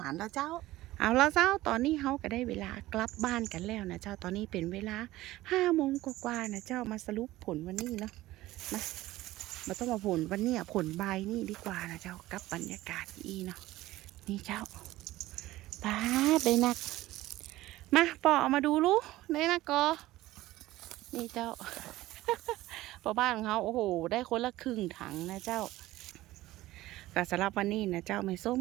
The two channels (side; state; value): left; quieter; 16.8 dB